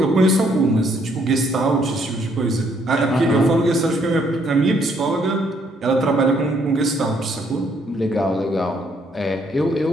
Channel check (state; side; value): normal; both; correlation 0.69